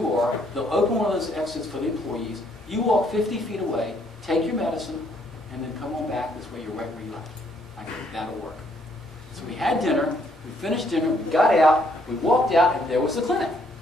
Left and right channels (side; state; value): both; normal; correlation 0.69